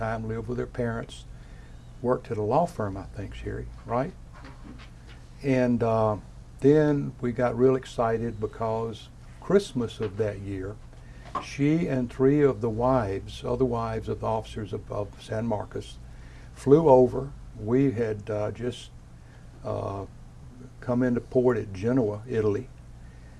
lived with her parents, worked at a law firm, I think, Sherry, right? And then we got real excited because Christmas of that year, she and 3 of the wives, other wives of the officers of San Marcos, flew over. We had just come into port at Genoa, Italy,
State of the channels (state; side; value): identical; both; correlation 1.00